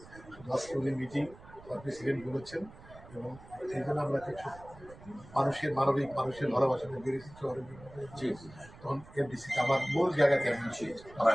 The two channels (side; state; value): right; noise; rumble, 19 dB below the sound